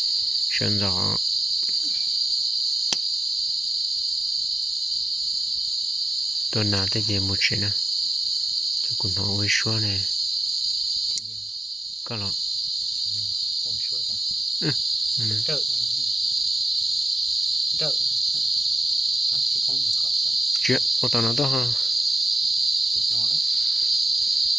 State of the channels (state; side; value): normal; both; correlation 0.94